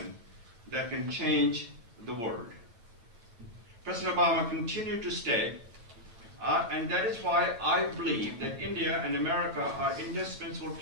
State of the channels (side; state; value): left; late; 8.9 ms